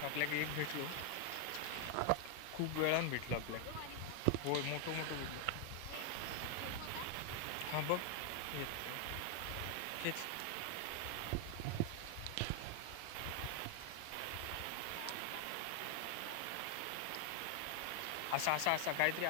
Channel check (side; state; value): both; different; correlation 0.00